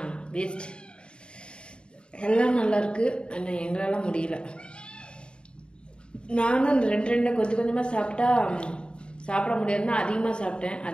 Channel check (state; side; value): late; right; 0.053 ms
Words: வேஸ்ட். எல்லாம் நல்லாயிருக்கு, ஆனால் எங்களால் முடியல. நானும் அந்த ரெண்டு கொஞ்சம் கொஞ்சமாக சாப்பிட்டா சாப்பிட முடியாதுன்னா அதிகமாக சாப்பிட்டேன்,